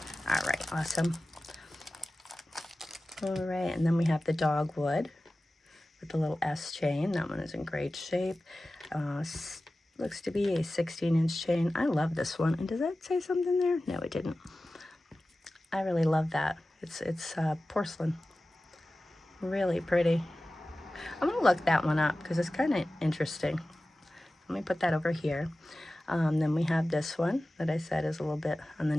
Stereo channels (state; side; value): normal; both; correlation 0.96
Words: All right, awesome. All right, and then we have the dogwood with the little S chain. That one is in great shape. Looks to be a 16-inch chain. I love this one. And does that say something there? No, it didn't. I really love that. It's porcelain. Really pretty. I'm going to look that one up because it's kind of interesting. Let me put that over here. Then we have this one that I said is a little bit on the